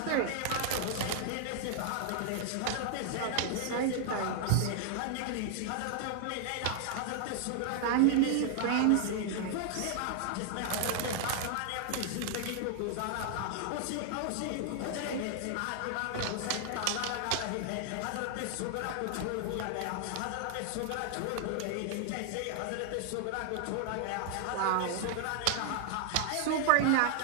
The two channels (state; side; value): different; both; correlation 0.00